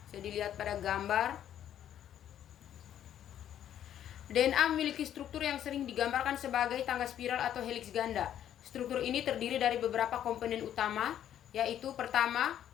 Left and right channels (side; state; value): right; quieter; 10.6 dB